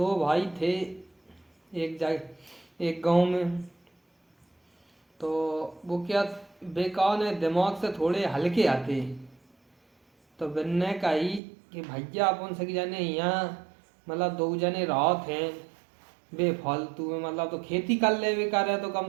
भाई थे एक जगह एक गांव में। तो वो क्या बेकार ने दिमाग से थोड़े हल्के आते। तो बनने कही कि भैया अपन से जाने यहाँ मतलब दो जने रात हैं बेफालतू में मतलब तो खेती कर ले भी करे तो कम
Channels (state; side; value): drops out; left; at 11.4 s